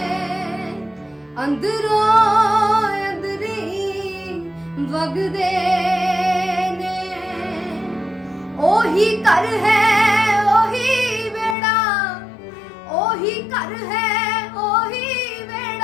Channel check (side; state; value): right; drops out; at 11.6 s